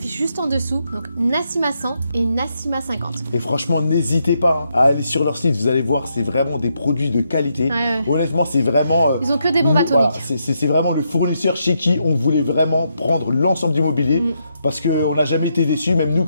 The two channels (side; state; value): both; inverted; correlation -0.80